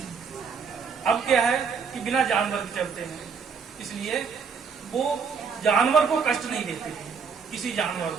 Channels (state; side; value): quieter; left; 5.9 dB